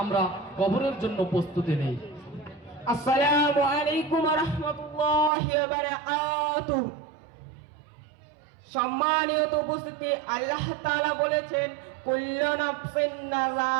কবরের জন্য প্রস্তুতি নেই। আসসালামু আলাইকুম ওয়া রাহমাতুল্লাহি ওয়া বারাকাতুহু। সম্মানিত উপস্থিতি, আল্লাহ তাআলা বলেছেন কুল্লু নাফসিন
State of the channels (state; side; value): drops out; left; at 5.3 s